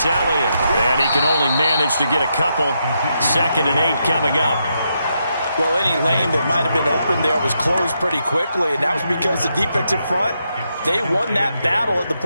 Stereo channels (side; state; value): both; inverted; correlation -0.81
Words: Elliott. And he can only manage to get a couple. 2nd and 8 coming up. Well, any lane that might have been open there was closed pretty quickly, and that was because the defensive front, they won that battle at the